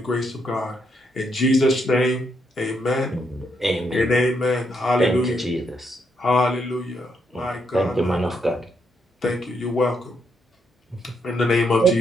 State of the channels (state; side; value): normal; both; correlation 0.77